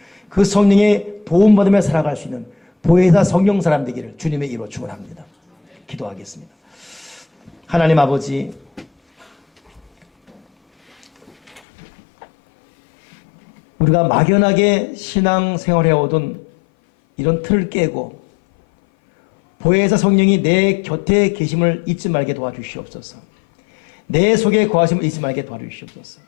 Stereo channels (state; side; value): drops out; right; at 11.6 s